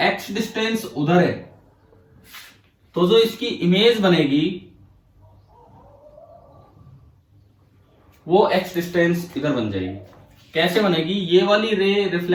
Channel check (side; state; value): both; identical; correlation 1.00